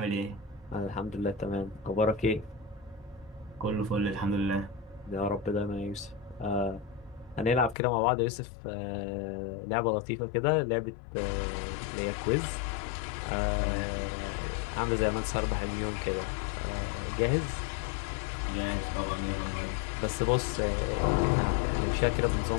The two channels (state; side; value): drops out; right; at 7.8 s